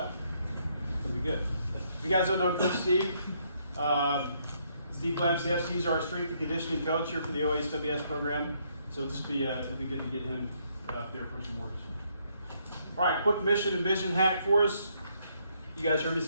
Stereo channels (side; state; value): both; inverted; correlation -0.72